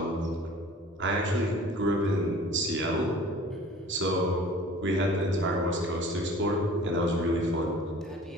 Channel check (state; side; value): normal; both; correlation 0.46